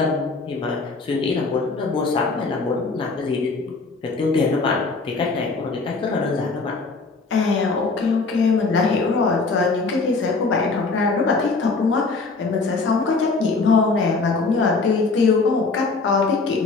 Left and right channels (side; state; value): right; quieter; 4.0 dB